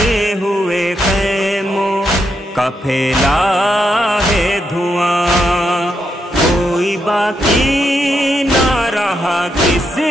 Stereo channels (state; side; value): normal; both; correlation 0.82